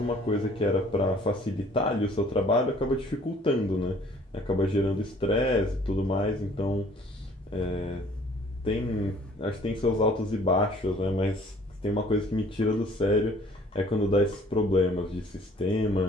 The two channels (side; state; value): both; normal; correlation 0.56